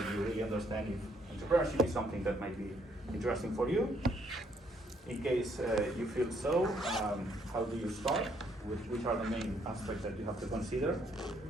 you really understand if entrepreneurship is something that might be interesting for you. In case you feel so, how do you start? Which are the main aspects that you have to consider?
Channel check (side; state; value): both; normal; correlation 0.70